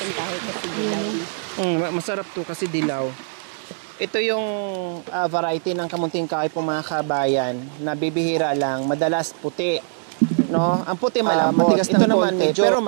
Masarap to kasi dilaw. Ito yung variety ng kamunting kahoy po mga kabayan na bibihira lang, madalas puti. No, ang puti malambot. Ito naman medyo pero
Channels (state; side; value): silent; left; digital silence